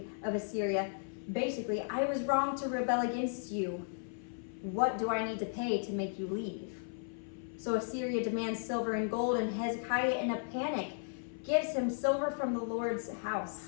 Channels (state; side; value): silent; right; 54 dB below the other